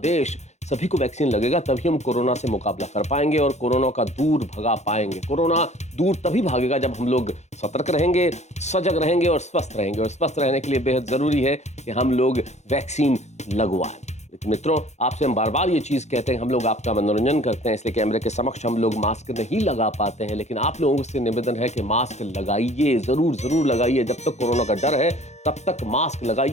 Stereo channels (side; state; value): right; late; 0.33 ms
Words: देश, सभी को वैक्सीन लगेगा, तभी हम कोरोना से मुकाबला कर पाएंगे और कोरोना का दूर भगा पाएंगे। कोरोना दूर तभी भागेगा जब हम लोग सतर्क रहेंगे, सजग रहेंगे और स्वस्थ रहेंगे। और स्वस्थ रहने के लिए बेहद जरूरी है कि हम लोग वैक्सीन लगवाएं। मित्रों, आपसे हम बार बार ये चीज कहते हैं, हम लोग आपका मनोरंजन करते हैं, इसलिए कैमरे के समक्ष हम लोग मास्क नहीं लगा पाते हैं, लेकिन आप लोगों से निवेदन है कि मास्क लगाइए, जरूर लगाइए। जब तक कोरोना का डर है तब तक मास्क